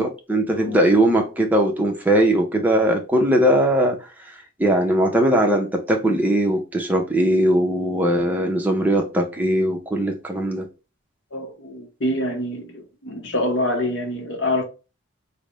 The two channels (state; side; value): normal; both; correlation 0.51